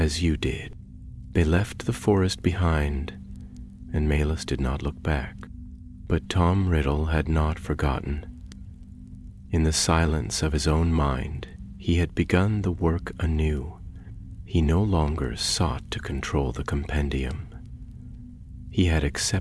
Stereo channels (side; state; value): both; identical; correlation 1.00